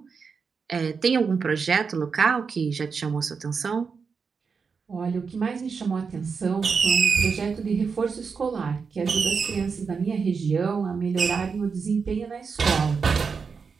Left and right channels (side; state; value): left; quieter; 5.5 dB